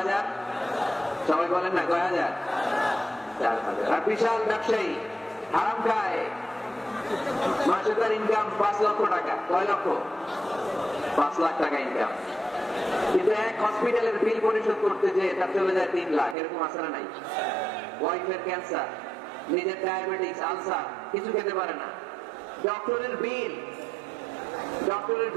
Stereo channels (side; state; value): left; drops out; at 16.4 s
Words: হাজার? সবাই বলেন না, কয় হাজার? 4,000। আর বিশাল ব্যবসায়ী হারাম খায়, মাসে তার ইনকাম 5 লক্ষ টাকা। কয় লক্ষ? 5 লাখ টাকা ইনকাম, কিন্তু এক হসপিটালের বিল পরিশোধ করতে যে তার চলে যায় 3 লাখ। এরকম আছে না নাই? ওয়াইফের ক্যান্সার, নিজের ডায়াবেটিস, আলসার কিছু খেতে পারে না। ডক্টরের বিল, ডক্টরের